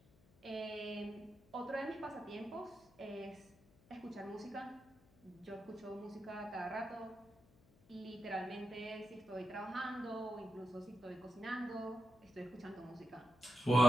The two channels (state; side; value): noise; left; hum, 26 dB below the sound